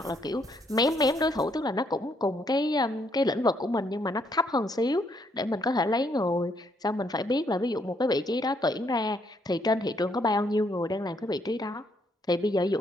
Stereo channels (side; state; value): both; normal; correlation 0.72